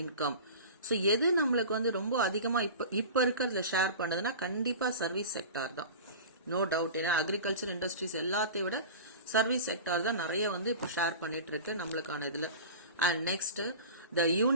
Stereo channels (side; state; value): both; inverted; correlation -0.35